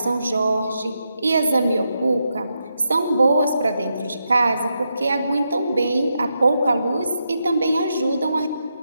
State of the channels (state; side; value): inverted; both; correlation -0.84